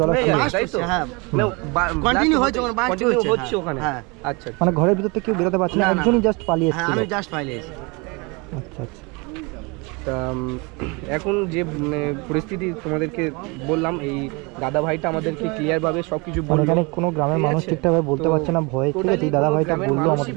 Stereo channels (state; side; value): quieter; left; 28.4 dB